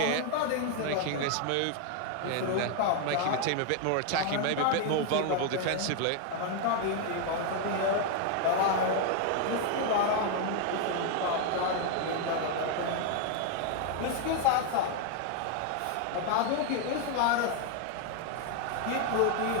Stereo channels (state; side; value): different; both; correlation 0.00